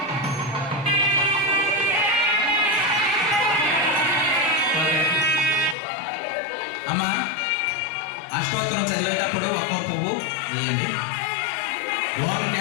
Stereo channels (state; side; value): drops out; right; at 5.8 s